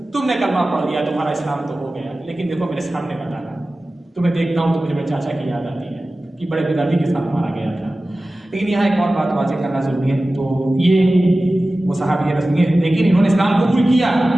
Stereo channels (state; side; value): normal; both; correlation 0.96